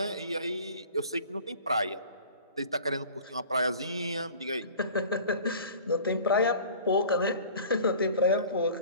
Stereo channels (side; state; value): both; inverted; correlation -0.44